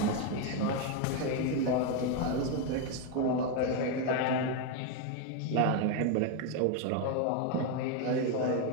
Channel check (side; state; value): both; different; correlation 0.02